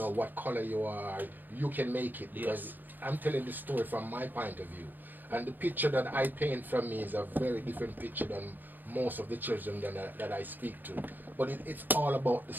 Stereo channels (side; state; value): left; late; 0.088 ms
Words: what color you are, you can make it. Because I'm telling the story from my point of view. And the picture that I paint from me is a very different picture than most of the children that I speak to. But it's all about the